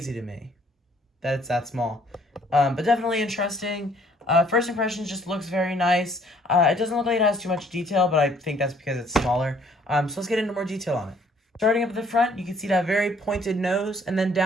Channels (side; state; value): both; normal; correlation 0.61